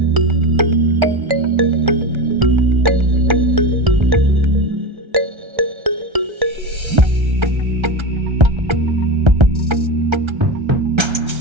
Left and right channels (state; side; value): late; left; 1.3 ms